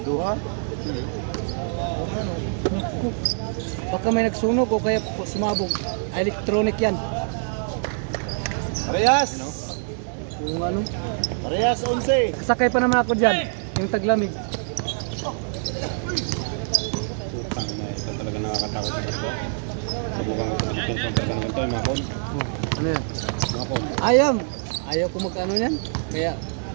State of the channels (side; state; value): left; silent; 62 dB below the other